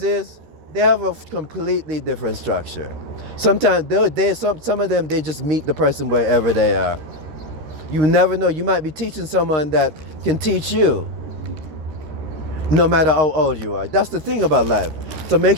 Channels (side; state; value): left; late; 13 ms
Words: is they have a completely different structure. Sometimes some of them they just meet the person wherever they are. You never know. You might be teaching someone that can teach you, no matter how old you are. That's the thing about life. So make